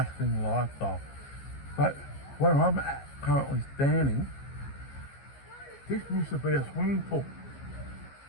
lifestyle. But where I'm currently standing, this used to be a swimming pool,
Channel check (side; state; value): right; late; 15 ms